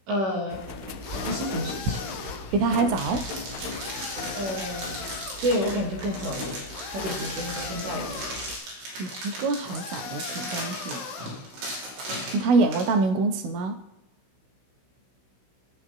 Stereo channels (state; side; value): late; left; 16 ms